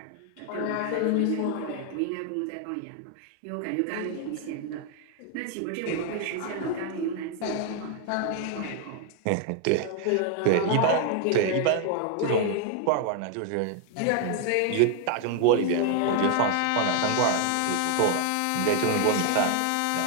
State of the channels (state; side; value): different; both; correlation 0.00